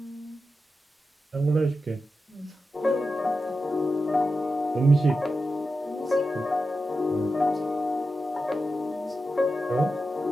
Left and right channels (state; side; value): normal; both; correlation 0.90